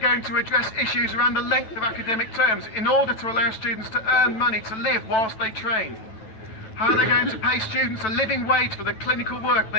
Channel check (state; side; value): late; right; 9.2 ms